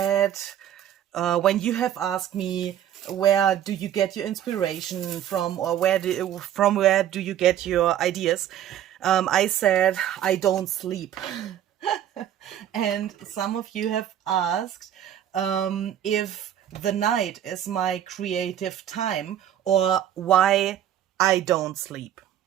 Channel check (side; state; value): left; quieter; 10.9 dB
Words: when you have asked me, where do you get your inspiration from, or from where do you get your ideas, I said, I don't sleep. And some of you have asked if the night is my creative time, or why I don't sleep.